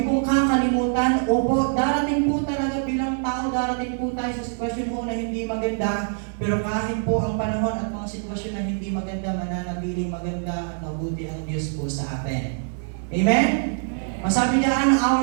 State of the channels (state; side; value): silent; left; digital silence